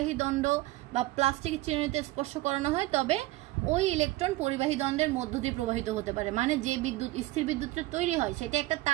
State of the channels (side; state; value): left; quieter; 18.5 dB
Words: দণ্ড বা প্লাস্টিকের চিরুনিতে স্পর্শ করানো হয়, তবে ওই ইলেকট্রন পরিবাহী দণ্ডের মধ্য দিয়ে প্রবাহিত হতে পারে। মানে যে বিদ্যুৎ স্থির বিদ্যুৎটা তৈরি হয় সেটা একটা